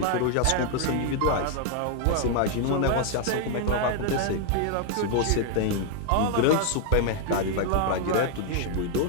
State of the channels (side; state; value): both; different; correlation 0.00